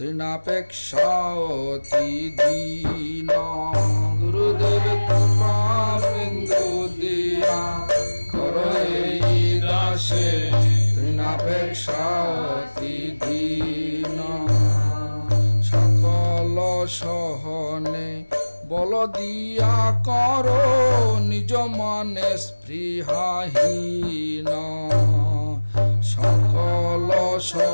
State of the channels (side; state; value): both; inverted; correlation -1.00